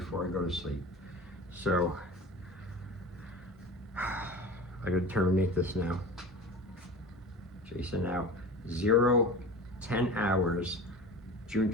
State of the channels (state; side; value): normal; both; correlation 0.34